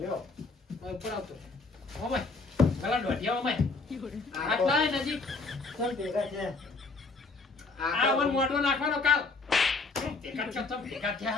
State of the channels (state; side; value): quieter; right; 3.8 dB